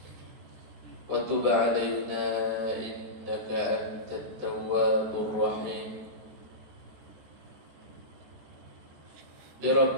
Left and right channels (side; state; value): left; late; 14 ms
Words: Wa tub 'alaina innaka antat tawwabur rahim. Bi